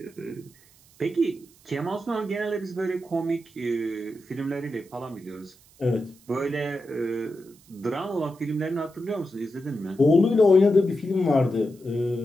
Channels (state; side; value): noise; right; hiss, 28 dB below the sound